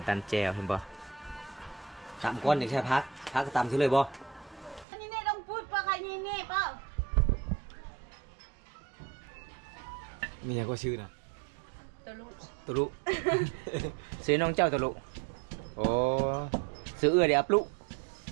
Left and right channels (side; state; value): left; drops out; at 4.9 s